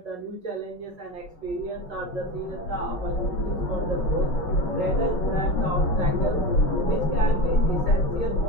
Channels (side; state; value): right; late; 5.4 ms